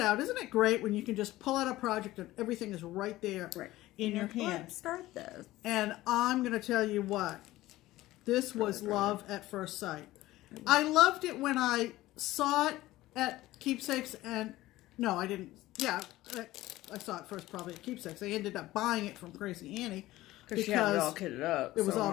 Isn't it great when you can just pull out a project and everything is right there in your hand? Let's start this. And I'm going to tell you what, this was love at first sight. I loved it when I saw it at Keepsakes, and no, I didn't. Yeah, I saw it first probably at Keepsakes. I ended up buying it from Crazy Annie. Because she had it all kitted up. It was all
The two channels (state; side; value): quieter; right; 16.8 dB